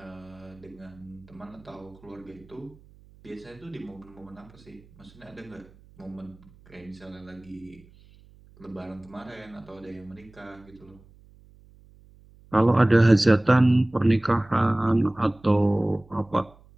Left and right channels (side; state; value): right; noise; hum, 26 dB below the sound